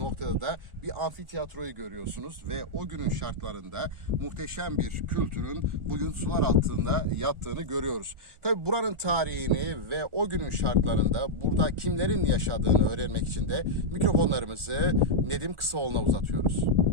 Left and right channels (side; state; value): left; late; 1.4 ms